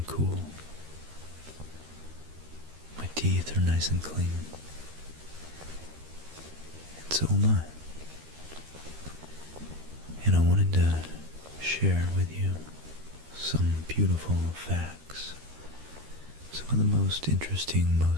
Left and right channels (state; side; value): late; left; 13 ms